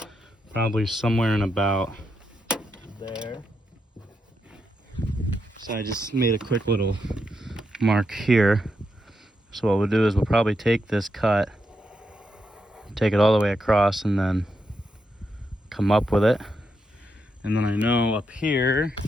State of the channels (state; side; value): normal; both; correlation 0.83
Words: Probably somewhere in about there. So I just made a quick little mark here. So what we'll do is we'll probably take this cut, take it all the way across, and then come up with it. And then I know up here